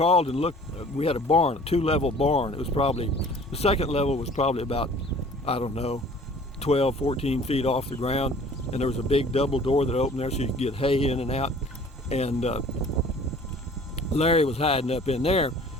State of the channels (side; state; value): both; normal; correlation 0.50